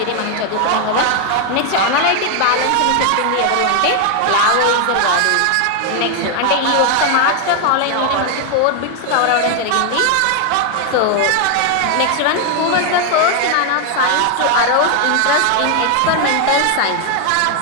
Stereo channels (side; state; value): both; different; correlation 0.00